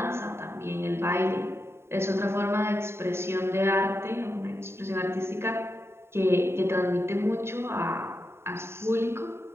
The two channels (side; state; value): left; late; 0.12 ms